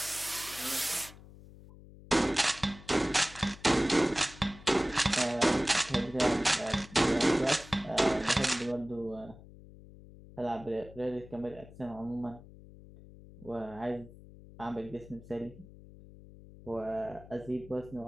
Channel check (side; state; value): left; noise; hum, 19 dB below the sound